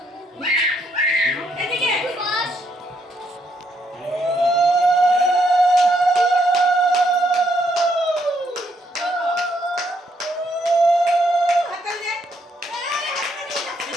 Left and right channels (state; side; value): normal; both; correlation 0.73